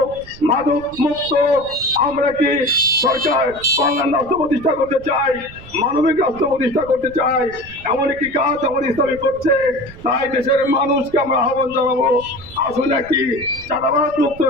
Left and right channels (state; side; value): noise; right; rumble, 18 dB below the sound